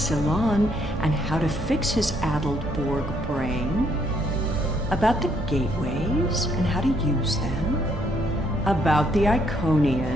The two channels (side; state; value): both; normal; correlation 0.71